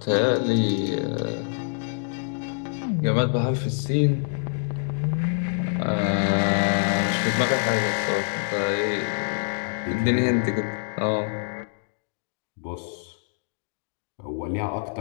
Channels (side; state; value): right; silent; digital silence